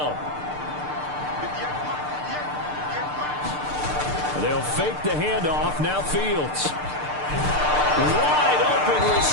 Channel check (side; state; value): left; late; 6.7 ms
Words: They'll fake the handoff. Now Fields. Wide open